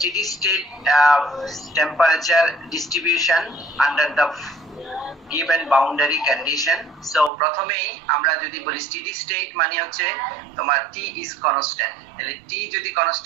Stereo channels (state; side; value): drops out; left; at 7.3 s